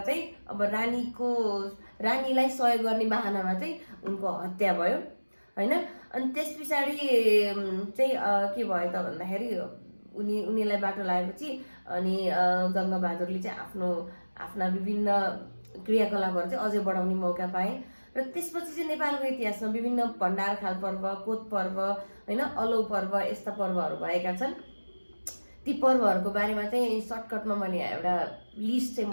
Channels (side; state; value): both; inverted; correlation -1.00